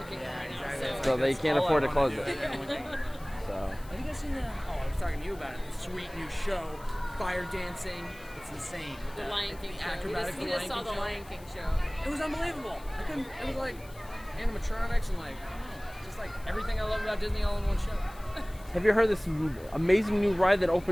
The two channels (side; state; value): left; noise; hiss, 23 dB below the sound